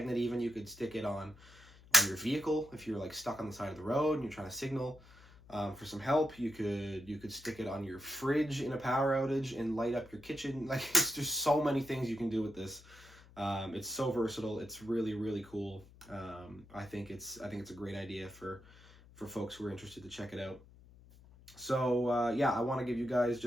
even you could stick it on your vehicle if you're like stuck on the side of the road and you're trying to signal for some help. You could stick it on your fridge in a power outage and light up your kitchen. Like, it's just so many things you can do with this. It's so versatile. It's really, really cool. I think it's a great idea for folks who are interested to check it out. So yeah, I want to give you guys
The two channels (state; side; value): noise; left; hum, 22 dB below the sound